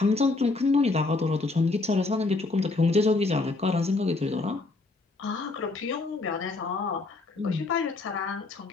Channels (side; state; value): right; quieter; 3.4 dB